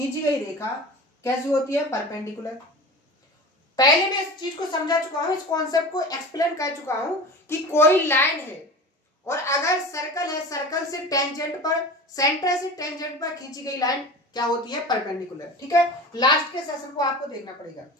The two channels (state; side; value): normal; both; correlation 0.34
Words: गई रेखा कैसी होती है, परपेंडिकुलर। पहले मैं इस चीज को समझा चुका हूं, इस कॉन्सेप्ट को एक्सप्लेन कर चुका हूं कि कोई लाइन है और अगर सर्कल है, सर्कल से टेंजेंट पर, सेंटर से टेंजेंट पर खींची गई लाइन क्या होती है, परपेंडिकुलर। ठीक है, लास्ट के सेशन को आपको देखना पड़ेगा।